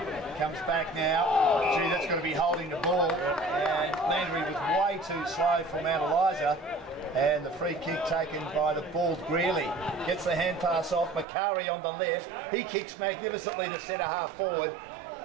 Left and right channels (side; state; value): left; drops out; at 11.2 s